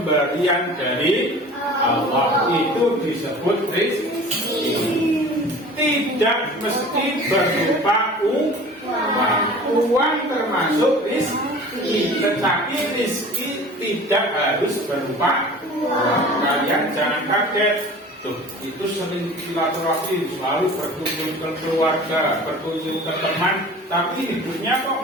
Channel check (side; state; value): both; normal; correlation 0.42